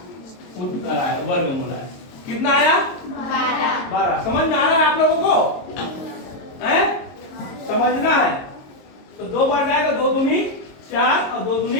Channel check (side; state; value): right; late; 22 ms